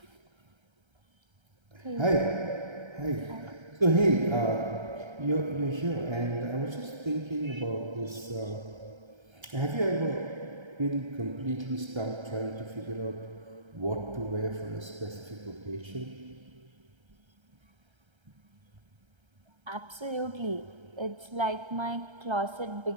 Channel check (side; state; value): left; late; 1.3 ms